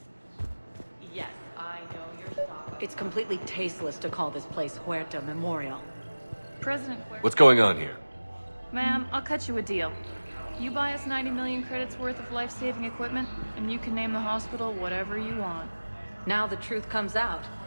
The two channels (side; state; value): both; inverted; correlation -1.00